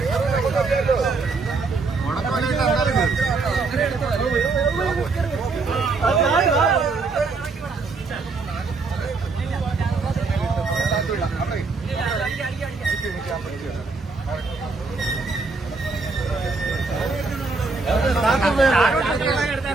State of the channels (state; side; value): quieter; left; 4.1 dB